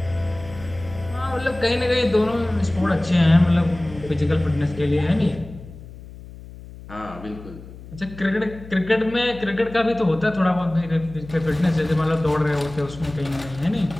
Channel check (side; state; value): left; noise; hum, 16 dB below the sound